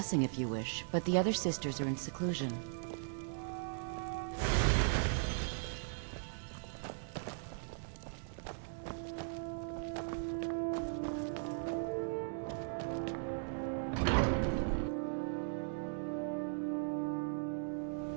if you wish, but the other sisters are in seclusion.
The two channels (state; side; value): silent; left; 52 dB below the other